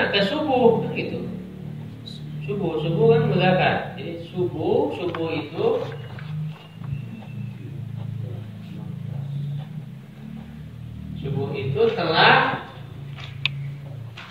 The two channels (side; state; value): both; identical; correlation 1.00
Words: Ke subuh gitu. Subuh kan mudzakkar. Jadi subuh itu telah